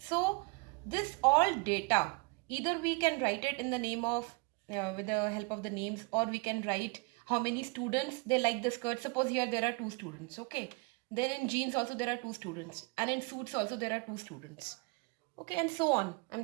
this all data, either we can write it in the name of with the help of the names, or we can write how many students they like the skirt. Suppose here there are two students. Okay, then in jeans also there are two students, and in suits also there are two students. Okay, and so on.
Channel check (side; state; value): left; quieter; 29.2 dB